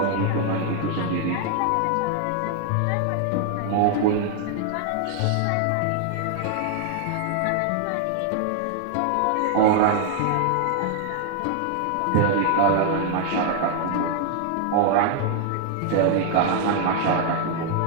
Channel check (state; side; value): different; both; correlation 0.00